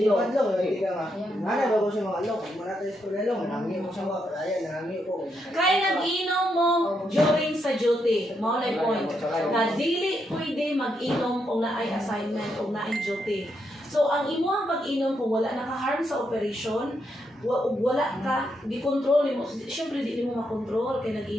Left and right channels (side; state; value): both; normal; correlation 0.80